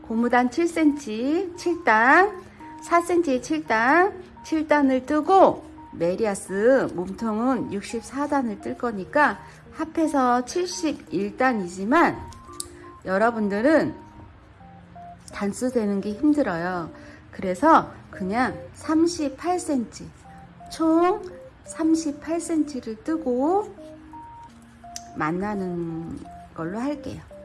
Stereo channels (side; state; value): both; identical; correlation 1.00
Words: 고무단 7cm, 7단, 4cm에 7단, 7단을 뜨고 메리아스 몸통은 64단을 뜰 거니까 합해서 71단이지만 여러분들은 단수 되는 게 힘들어요. 그래서 그냥 38cm, 총 38cm를 뜨고 만나는 걸로 할게요.